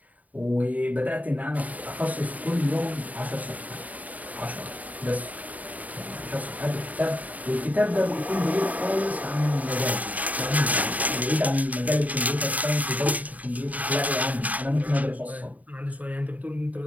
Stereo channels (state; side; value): late; left; 0.074 ms